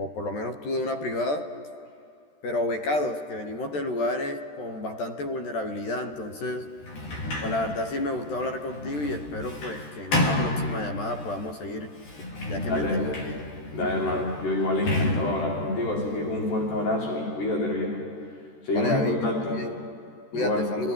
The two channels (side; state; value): right; late; 13 ms